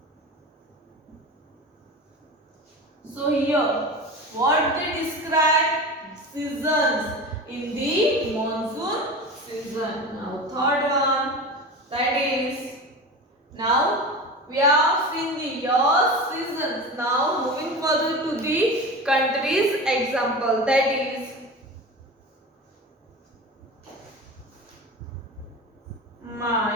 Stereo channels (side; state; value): both; normal; correlation 0.30